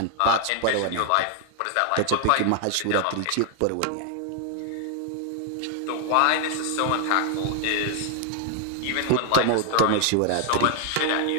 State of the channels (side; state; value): both; different; correlation 0.00